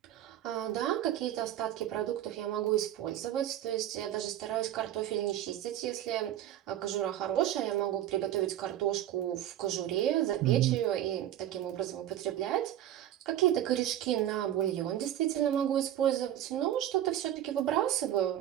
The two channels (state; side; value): quieter; left; 12.0 dB